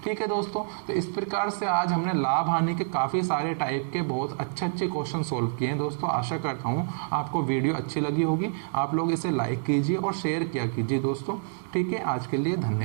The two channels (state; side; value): silent; left; digital silence